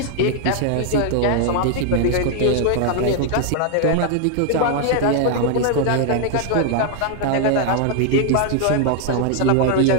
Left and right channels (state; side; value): different; both; correlation 0.00